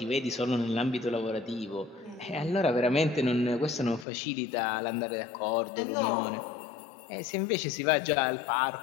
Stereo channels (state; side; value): drops out; right; at 4.0 s